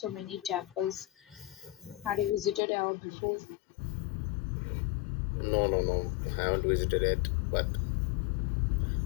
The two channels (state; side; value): drops out; right; at 2.6 s